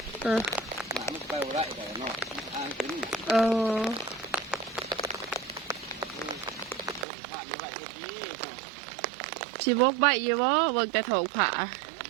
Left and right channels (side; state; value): left; drops out; at 7.1 s